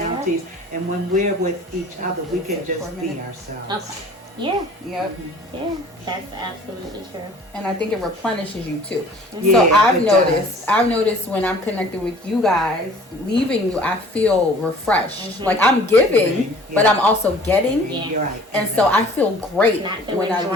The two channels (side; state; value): both; normal; correlation 0.50